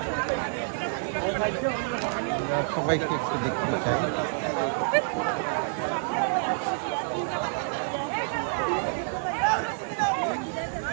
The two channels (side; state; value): left; silent; 59 dB below the other